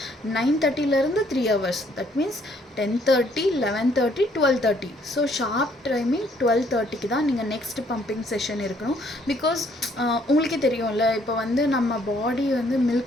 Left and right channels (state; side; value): normal; both; correlation 0.66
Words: 9:30லேருந்து 3 hours. That means 10:30, 11:30, 12:30. So sharp timing 12:30க்கு தான் நீங்கள் நெக்ஸ்ட் பம்பிங் செஷன் இருக்கணும். பிகாஸ் உங்களுக்கே தெரியும்ல, இப்போ வந்து நம்ம பாடி வந்து